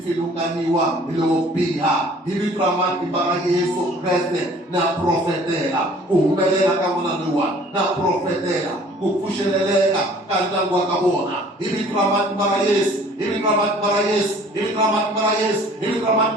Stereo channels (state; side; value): normal; both; correlation 0.52